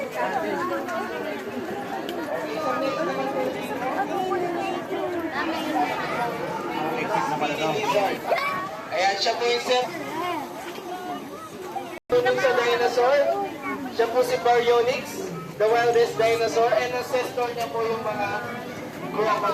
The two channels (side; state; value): both; identical; correlation 1.00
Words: Ayan, siya po yung sir. Tunong sa dinosaur. Siya po si Baryonyx, the wildest dinosaur. And ancestor niya po yung mga